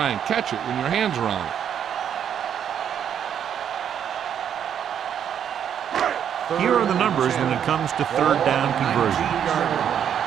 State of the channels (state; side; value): quieter; left; 8.9 dB